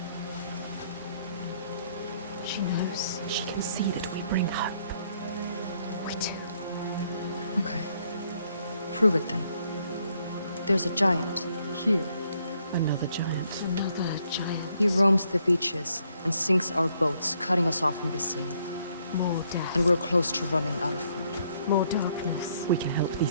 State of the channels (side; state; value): both; inverted; correlation -0.71